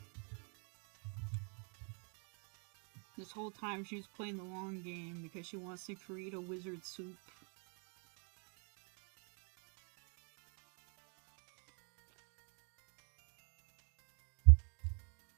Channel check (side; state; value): left; quieter; 39.0 dB